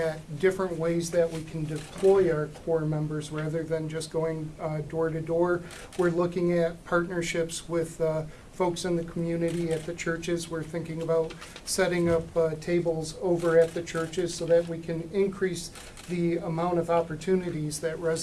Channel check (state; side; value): identical; both; correlation 1.00